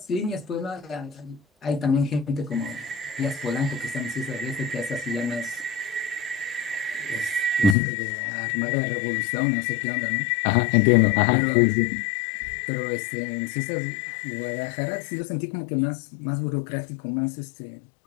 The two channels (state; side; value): drops out; right; at 7.8 s